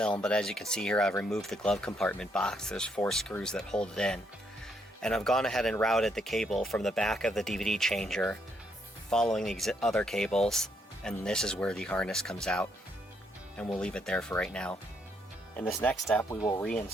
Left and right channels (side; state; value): both; normal; correlation 0.74